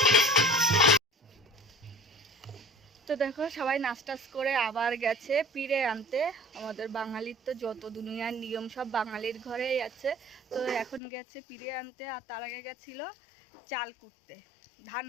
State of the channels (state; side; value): drops out; right; at 11.0 s